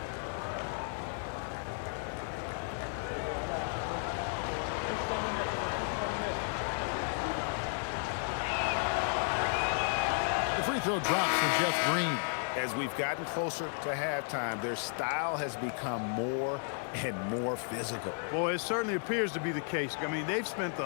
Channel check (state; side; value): silent; right; 55 dB below the other